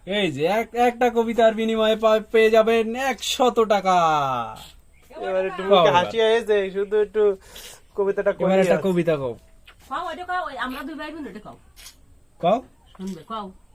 এই যে একটা কবিতার বিনিময়ে পেয়ে যাবেন 100 টাকা। এবার একটু কও মুখে এবার। হাসি হয়েছে, শুধু একটু কবিতাটা এবার করে একটা কবিতা কও। কও ওইটা কও, ওই আমরা দুই ভাই বোন ওইটা কও। কও শুনবে কও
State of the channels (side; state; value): both; identical; correlation 1.00